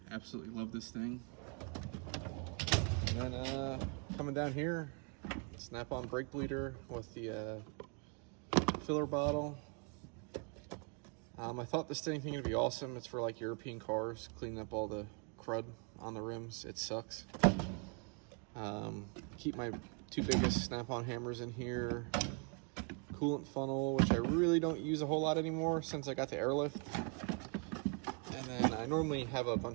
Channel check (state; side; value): quieter; left; 36.9 dB